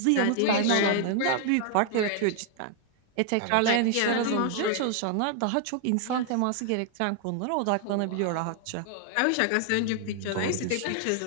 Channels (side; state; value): both; different; correlation 0.00